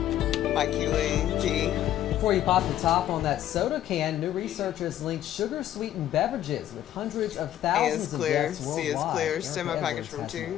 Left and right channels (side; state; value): right; quieter; 12.1 dB